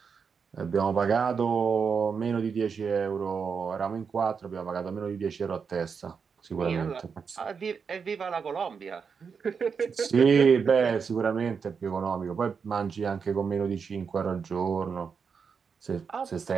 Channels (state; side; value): quieter; left; 6.0 dB